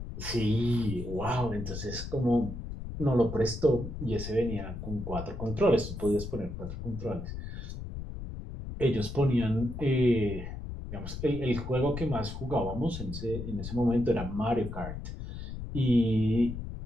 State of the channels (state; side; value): noise; left; rumble, 8 dB below the sound